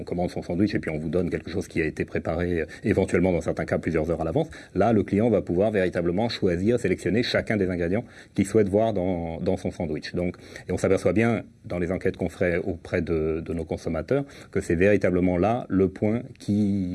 commande son sandwich et puis on vous donne quelque chose qui a été préparé éventuellement dans certains cas plusieurs heures à l'avance, là, le client va pouvoir véritablement choisir, sélectionner chacun des ingrédients qu'il souhaite voir dans son sandwich. Donc, et on s'aperçoit bien dans les enquêtes qu'on ferait auprès de nos consommateurs que c'est véritablement là le point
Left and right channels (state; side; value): identical; both; correlation 1.00